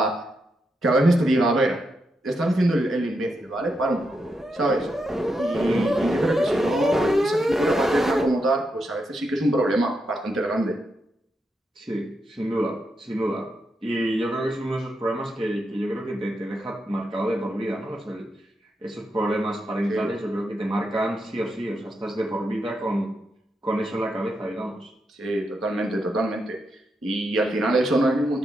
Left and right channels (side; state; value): both; normal; correlation 0.84